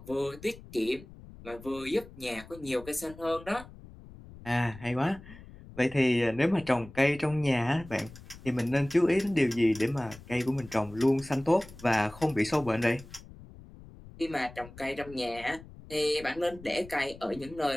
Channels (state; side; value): noise; left; rumble, 18 dB below the sound